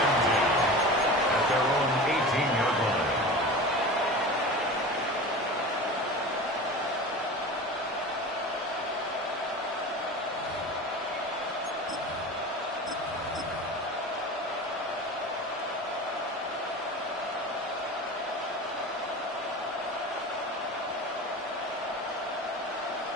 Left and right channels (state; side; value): normal; both; correlation 0.33